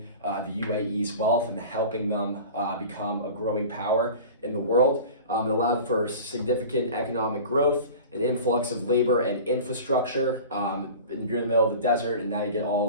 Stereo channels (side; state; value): both; inverted; correlation -0.37